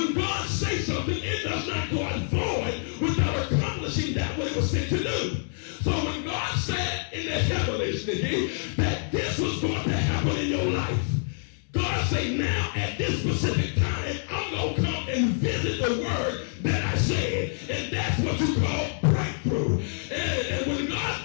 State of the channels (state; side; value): silent; right; digital silence